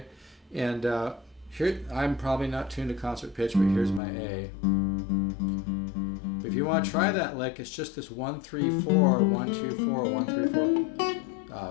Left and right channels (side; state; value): right; drops out; at 4.0 s